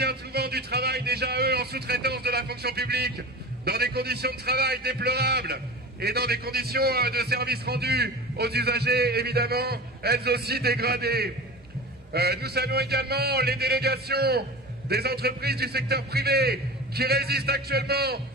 souvent du travail déjà eux en sous-traitance de la fonction publique, dans des conditions de travail déplorables et dans des conditions de service rendu aux usagers évidemment, elles aussi dégradées. Nous saluons également les délégations des entreprises du secteur privé qui résistent actuellement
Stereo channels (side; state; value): both; normal; correlation 0.33